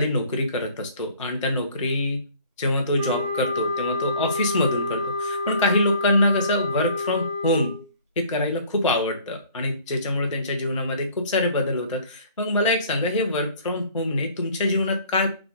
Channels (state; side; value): inverted; both; correlation -0.53